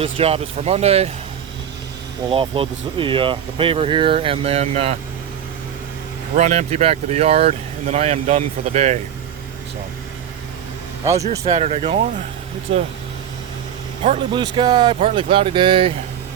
job is for Monday. We'll offload the paver here and then run empty back to the yard, and then I am done for the day. So, how's your Saturday going? It's a partly blue sky, partly cloudy day.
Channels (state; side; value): quieter; left; 9.3 dB